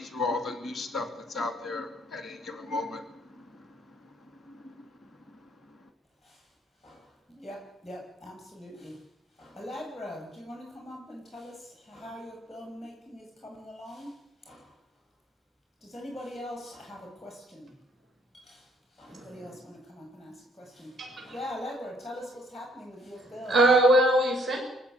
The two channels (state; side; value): normal; both; correlation 0.65